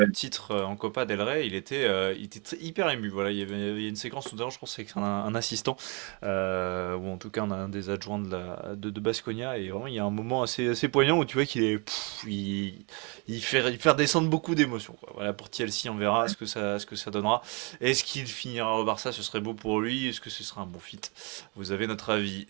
titre en Copa del Rey. Il était hyper ému. Voilà, il y avait une séquence tout à l'heure, je pense, avec un assistant, ou en tout cas un des adjoints de Baskonia. Et vraiment, il y a un moment assez poignant où tu vois qu'il est, il fait redescendre beaucoup d'émotions, quoi. Voilà, pour Thielsi, on verra ce que ça donnera. Est-ce qu'il finira au Barça? Ce serait beau pour lui. Est-ce que ce sera un bon fit? Vous avez notre avis.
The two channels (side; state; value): left; quieter; 32.2 dB